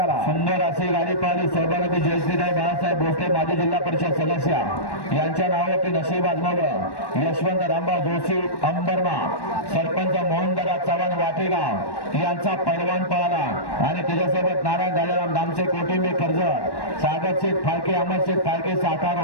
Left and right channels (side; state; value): right; late; 1.1 ms